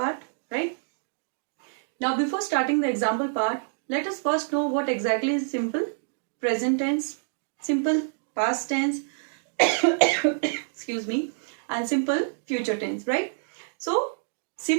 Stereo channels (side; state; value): left; silent; digital silence